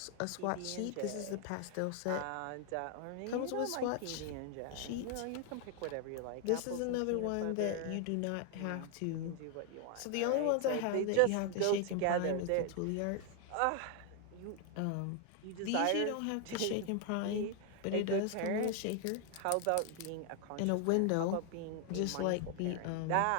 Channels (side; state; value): both; different; correlation 0.00